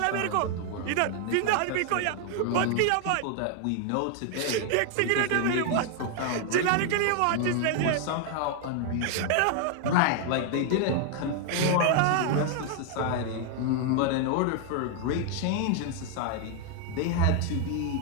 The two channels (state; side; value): different; both; correlation 0.00